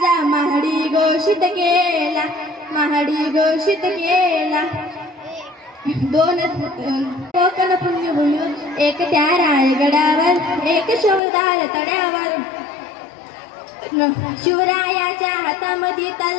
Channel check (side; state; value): right; drops out; at 11.2 s